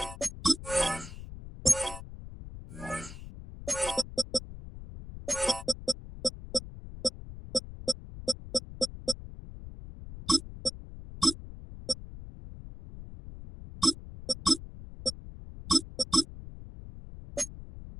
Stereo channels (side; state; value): left; noise; rumble, 13 dB below the sound